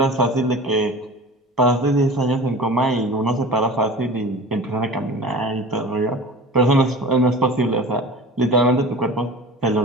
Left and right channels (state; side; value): normal; both; correlation 0.37